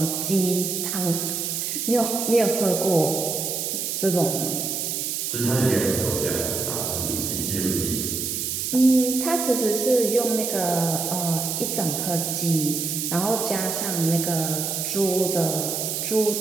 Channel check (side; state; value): right; noise; hiss, 2 dB below the sound